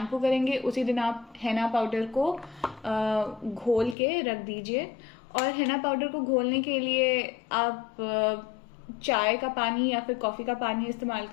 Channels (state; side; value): drops out; right; at 4.0 s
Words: करेंगे उसी दिन आप हेना पाउडर को घोल के रख दीजिए। और हेना पाउडर को घोलने के लिए आप चाय का पानी या फिर कॉफ़ी का पानी इस्तेमाल